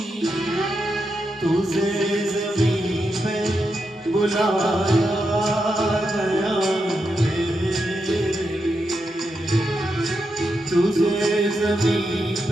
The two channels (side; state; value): both; normal; correlation 0.85